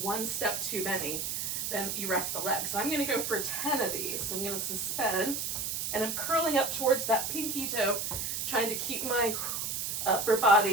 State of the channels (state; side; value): noise; right; hiss, 2 dB below the sound